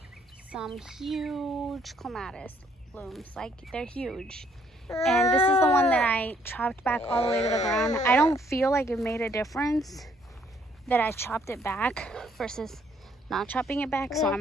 some huge clematis blooms. Like, they're huge. And this is the one that I chopped back all the way to the ground. I don't feel like it made a difference that I chopped it back versus not chopping it back, so I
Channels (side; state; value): both; normal; correlation 0.66